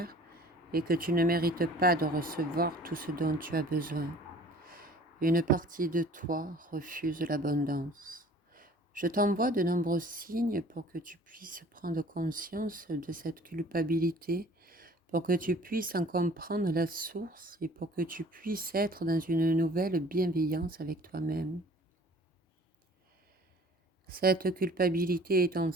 et que tu ne mérites pas de recevoir tout ce dont tu as besoin. Une partie de toi refuse l'abondance. Je t'envoie de nombreux signes pour que tu puisses prendre conscience de cette culpabilité, pour que tu puisses en comprendre la source et pour que tu puisses être dans une nouvelle bienveillance avec toi-même. Cette culpabilité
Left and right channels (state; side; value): normal; both; correlation 0.50